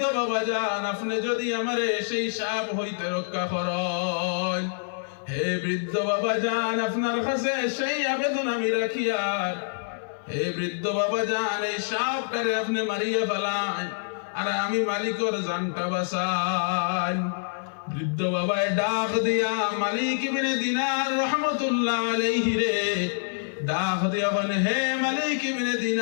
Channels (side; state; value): right; silent; digital silence